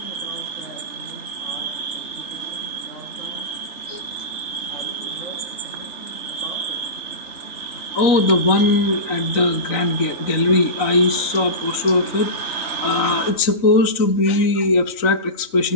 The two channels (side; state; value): right; late; 3.9 ms